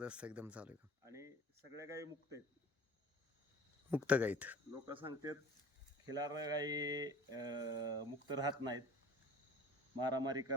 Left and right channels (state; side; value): normal; both; correlation 0.45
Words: एकदम चालू आहे. आणि सगळ्या गायी मुक्त आहेत. मुक्त गाईत लोक सांगतात खिलार गायी मुक्त राहत नाहीत, मारामारी